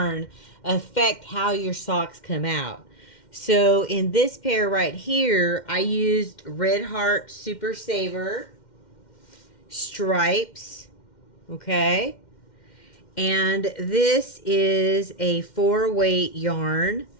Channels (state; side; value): late; right; 2.1 ms